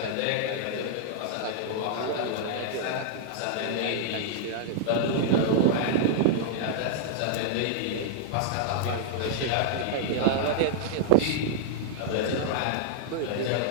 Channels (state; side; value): different; both; correlation -0.01